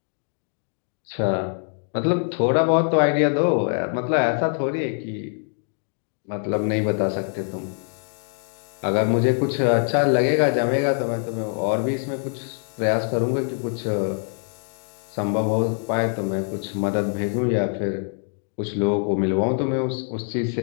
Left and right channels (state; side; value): silent; right; 55 dB below the other